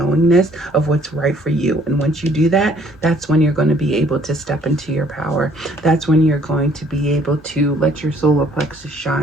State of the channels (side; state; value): both; normal; correlation 0.61